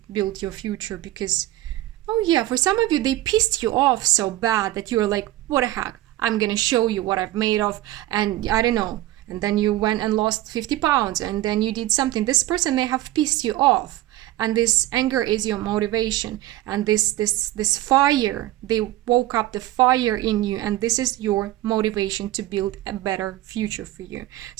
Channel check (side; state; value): left; quieter; 15.6 dB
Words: build your future, because Oh yeah, for some of you, they pissed you off so bad that you're like, what the heck? I'm gonna show you what I've made of, and I don't know. And then you went and lost 50 pounds, and then you did something. This person may have pissed you off, and this anger is your motivation, and this fire, they woke up the fire in you, and this is your motivation to build a better future for you.